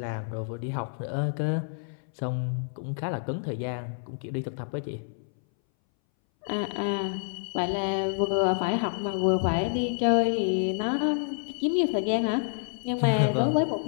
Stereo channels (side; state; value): right; silent; 59 dB below the other